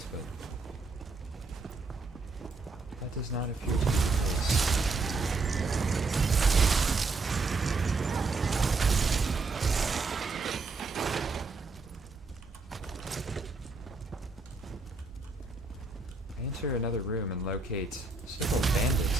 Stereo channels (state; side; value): quieter; left; 3.9 dB